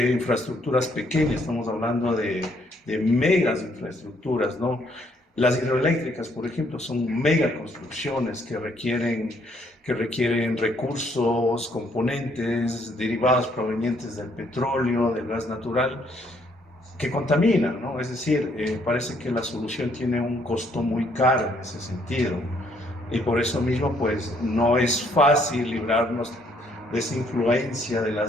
infraestructuras pequeñas, estamos hablando de megas infraestructuras, ¿no? Las hidroeléctricas, por ejemplo, son mega construcciones que requieren recursos, componentes derivados provenientes del petróleo, del gas natural, que contaminan, ¿no? Es decir, parece que la solución tiene un costo muy caro en ese sentido. Y por eso mismo, pues, no es fácil librarnos de esa influencia de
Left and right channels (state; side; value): normal; both; correlation 0.68